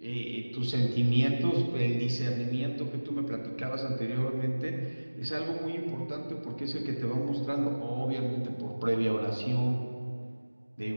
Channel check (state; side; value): inverted; both; correlation -1.00